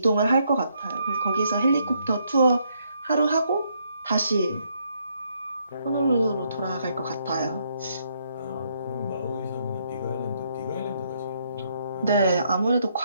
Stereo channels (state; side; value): inverted; both; correlation -0.73